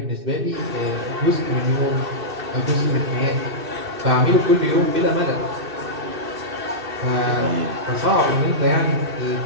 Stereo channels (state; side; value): late; left; 2.6 ms